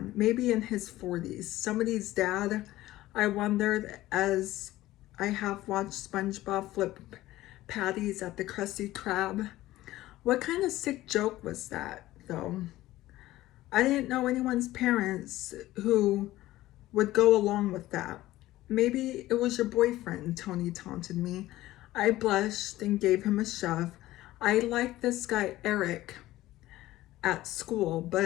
maybe in his 40s, somebody's dad. I wondered as I have watched SpongeBob flip patties at the Krusty Krab. What kind of sick joke was that, though? I didn't know anyone's parents who would go along with that. Maybe it was your boyfriend, Tony taunted me. I blushed and gave him a shove. I liked this guy, Eric, at school,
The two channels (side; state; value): right; quieter; 16.1 dB